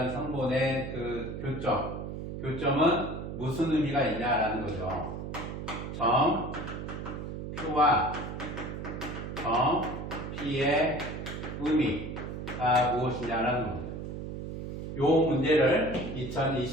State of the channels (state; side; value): noise; right; hum, 7 dB below the sound